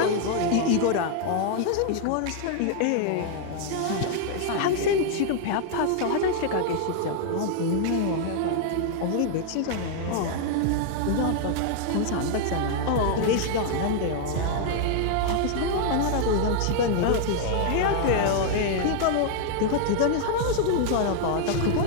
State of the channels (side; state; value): both; different; correlation 0.00